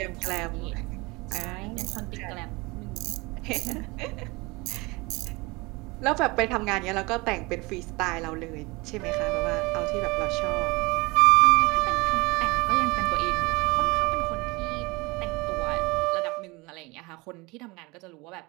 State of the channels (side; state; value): left; quieter; 24.6 dB